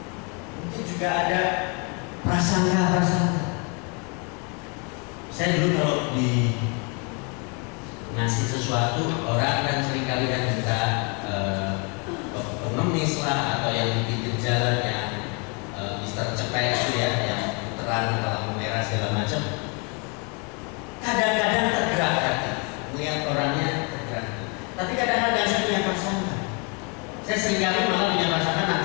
Mungkin juga ada prasangka. Saya dulu kalau di ngasih sesuatu, orang kan seringkali kan minta pengemis lah, atau yang di pinggir jalan yang Mister Cepet itu ya, yang terang lampu merah segala macam. Kadang-kadang tergerak hati melihat orangnya tergerak. Tapi kadang-kadang saya punya prasangka. Saya seringkali malah punya prasangka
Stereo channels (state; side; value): quieter; right; 34.0 dB